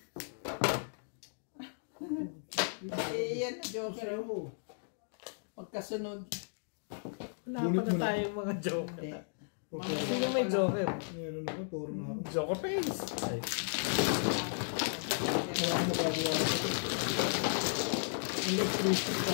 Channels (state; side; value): silent; right; digital silence